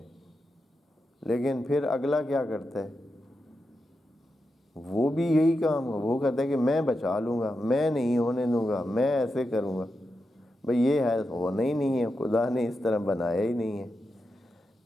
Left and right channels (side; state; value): both; normal; correlation 0.88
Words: لیکن پھر اگلا کیا کرتا ہے؟ وہ بھی یہی کام ہے، وہ کہتا ہے کہ میں بچا لوں گا، میں نہیں ہونے دوں گا، میں ایسے کروں گا۔ بھئی یہ ہے ہونا ہی نہیں ہے، خدا نے اس طرح بنایا ہی نہیں ہے۔